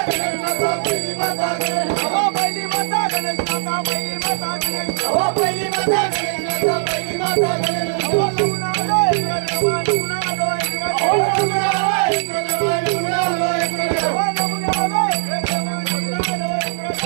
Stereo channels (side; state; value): left; silent; 66 dB below the other